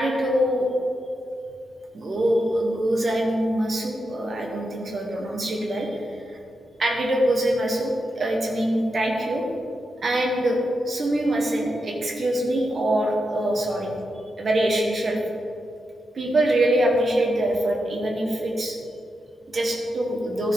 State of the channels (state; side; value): normal; both; correlation 0.86